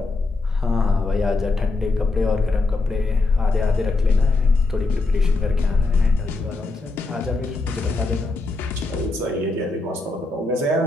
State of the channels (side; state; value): right; quieter; 3.4 dB